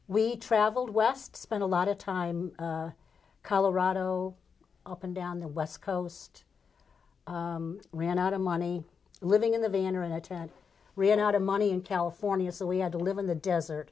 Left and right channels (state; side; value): quieter; right; 6.0 dB